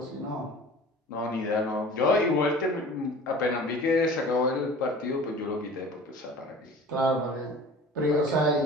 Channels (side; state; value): both; normal; correlation 0.42